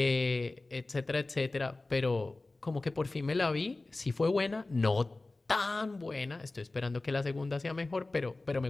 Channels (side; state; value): right; quieter; 3.1 dB